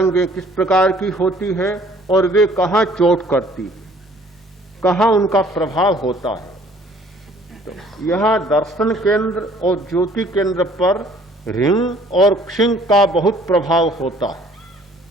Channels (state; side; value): normal; both; correlation 0.56